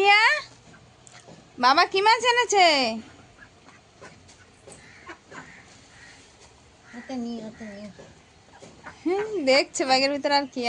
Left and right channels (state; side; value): identical; both; correlation 1.00